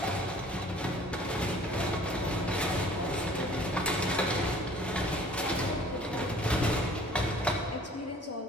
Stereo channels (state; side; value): normal; both; correlation 0.52